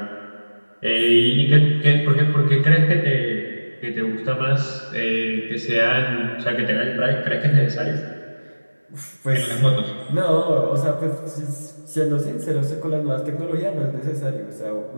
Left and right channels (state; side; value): inverted; both; correlation -1.00